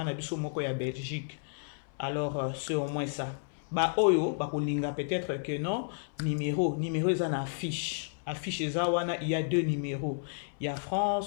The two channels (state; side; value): silent; right; 57 dB below the other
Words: na biso moko ya Belgique. Alors c'est au moins ça. Ba oyo ba kolinga peut-être que non numéro eza na affiche. Affiche Zawana, il y a 2 numéros. Il y a